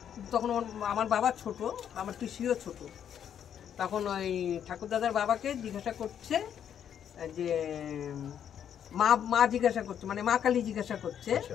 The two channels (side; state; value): right; quieter; 9.1 dB